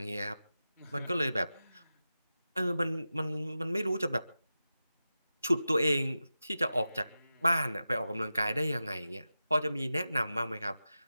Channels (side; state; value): both; inverted; correlation -0.94